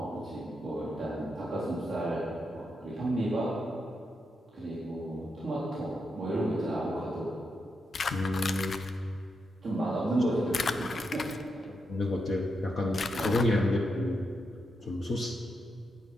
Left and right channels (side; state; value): both; normal; correlation 0.84